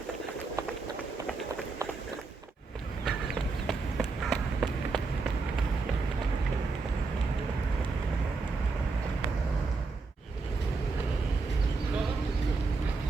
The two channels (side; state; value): left; quieter; 4.1 dB